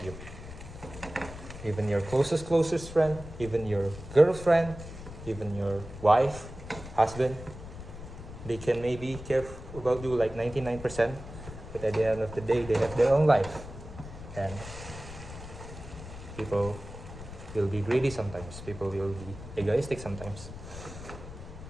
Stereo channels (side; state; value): left; noise; rumble, 13 dB below the sound